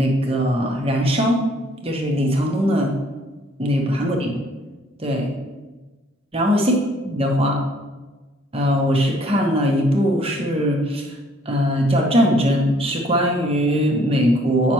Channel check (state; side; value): normal; both; correlation 0.62